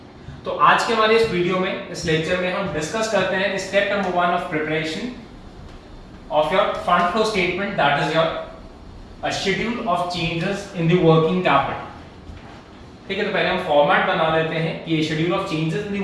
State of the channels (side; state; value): both; identical; correlation 1.00